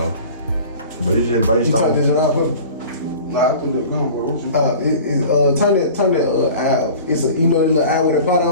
but it's just based on. You turn this out for me? No, I think they're gone, bro. Turn that eye off. It's a, you know, the little eye with a pot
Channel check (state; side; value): inverted; both; correlation -0.41